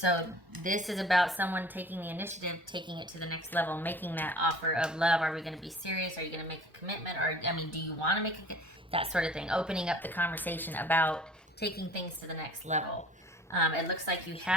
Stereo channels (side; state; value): both; normal; correlation 0.48